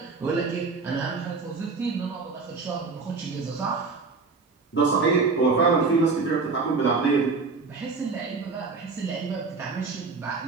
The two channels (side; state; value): left; quieter; 4.3 dB